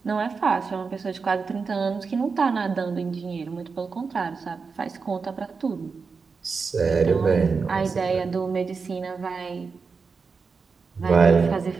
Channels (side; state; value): left; quieter; 5.0 dB